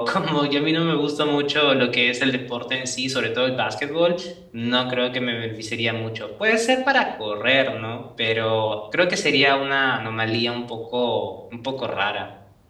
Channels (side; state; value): both; identical; correlation 1.00